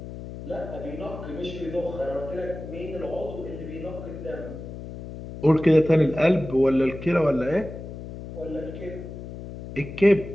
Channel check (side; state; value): left; noise; hum, 11 dB below the sound